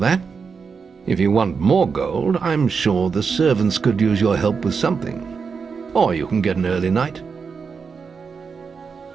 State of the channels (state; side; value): quieter; left; 5.5 dB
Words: If you want more gold, I'm sure the servants could use your help with something. Or you can get an early night.